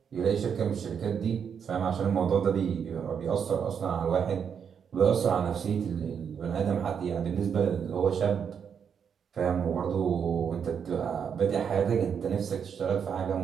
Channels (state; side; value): quieter; left; 7.3 dB